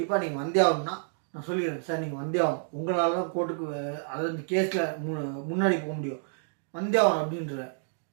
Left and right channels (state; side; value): silent; left; digital silence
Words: நீங்கள் வந்தே ஆகணும்னா நான் சொல்லிடுறேன், சார் நீங்கள் வந்தே ஆகணும், உங்களால் தான் கோர்ட்டுக்கு அதாவது கேஸில் முன்னாடி போக முடியும், வந்தே ஆகணும் அப்படின்ற.